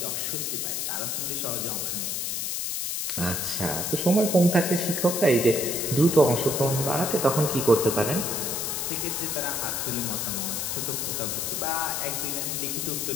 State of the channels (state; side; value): noise; left; hiss, 1 dB below the sound